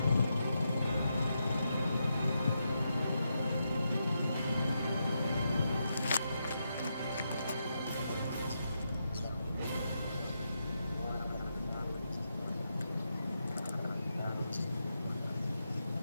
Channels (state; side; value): inverted; both; correlation -0.84